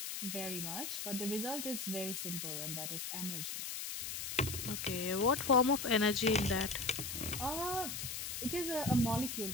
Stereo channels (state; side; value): noise; left; hiss, 5 dB below the sound